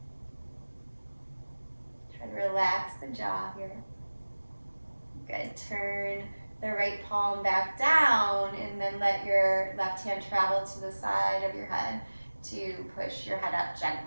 Try to relax the jaw here. Good. Turn the right palm back down and then let your left hand travel to the side of your head to push your head up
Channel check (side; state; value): both; inverted; correlation -1.00